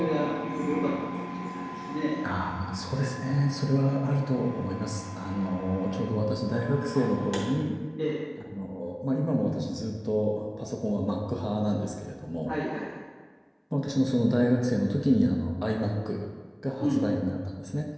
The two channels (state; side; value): identical; both; correlation 1.00